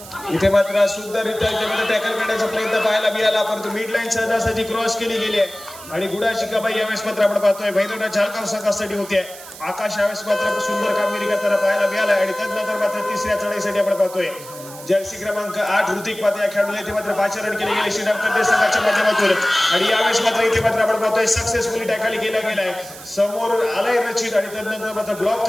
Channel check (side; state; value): right; noise; hiss, 16 dB below the sound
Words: इथे मात्र सुंदररित्या टॅकल करण्याचा प्रयत्न पाहायला मिळाला परंतु मिड लाईन सहजासहजी क्रॉस केली गेली आहे आणि गुडा शिकाबाई यावेळेस मात्र आपण पाहतोय भैरवनाथ झालगाव संघासाठी होते. आकाश यावेळेस मात्र सुंदर कामगिरी करताना पाहायला मिळाला आणि त्यानंतर मात्र तिसऱ्या चढाईसाठी आपण पाहतोय जर्सी क्रमांक 8 ऋतिक पाते या खेळाडूला इथे मात्र 5 रन केले गेले श्रीराम कर्ते संघाच्या माध्यमातून आणि यावेळेस मात्र इथे मात्र आपण पाहतोय सक्सेसफुली टॅकल केला गेलाय. समोर आलाय रचित आणि त्यानंतर मात्र ब्लॉक